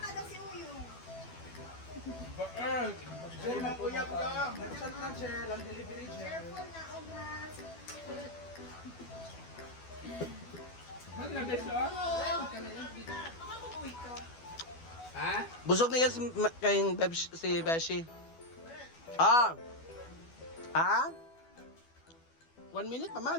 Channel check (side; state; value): right; late; 12 ms